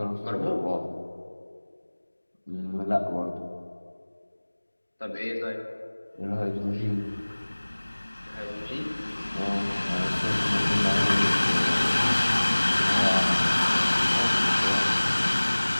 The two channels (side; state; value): both; inverted; correlation -1.00